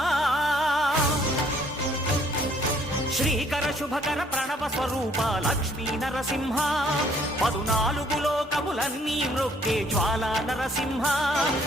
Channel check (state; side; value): normal; both; correlation 0.62